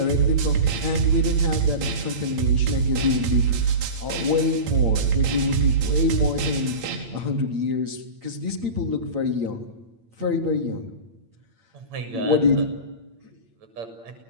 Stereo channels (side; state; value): left; late; 8.8 ms